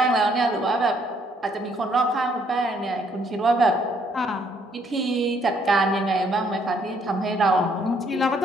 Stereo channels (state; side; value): normal; both; correlation 0.68